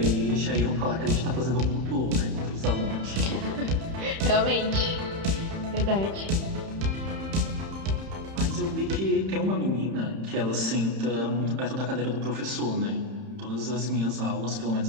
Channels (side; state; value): left; late; 31 ms